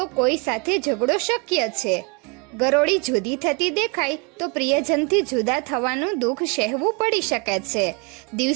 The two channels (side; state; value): left; quieter; 31.4 dB